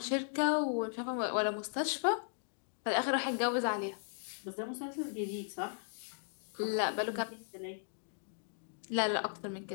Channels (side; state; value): right; silent; digital silence